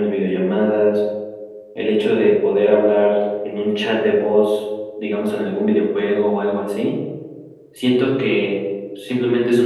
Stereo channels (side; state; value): both; identical; correlation 1.00